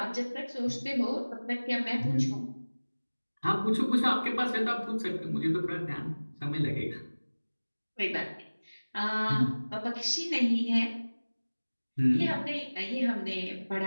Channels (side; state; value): both; inverted; correlation -1.00